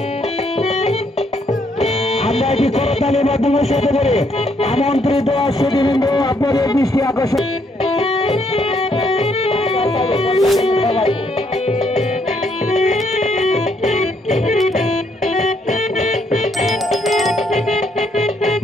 আমরা কি করতালির মাধ্যমে সাথে করে আমন্ত্রিত সুধীবৃন্দ আপনাদের দৃষ্টি আকর্ষণ।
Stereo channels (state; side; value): normal; both; correlation 0.71